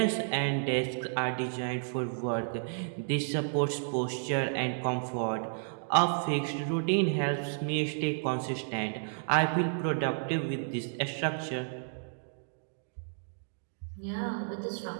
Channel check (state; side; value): silent; left; digital silence